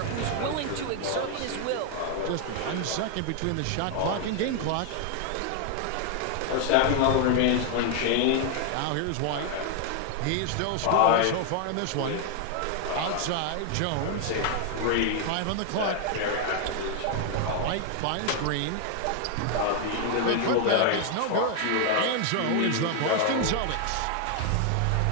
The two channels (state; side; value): different; both; correlation 0.00